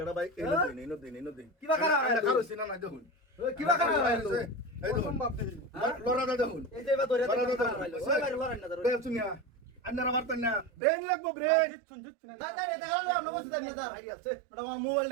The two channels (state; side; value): drops out; left; at 10.7 s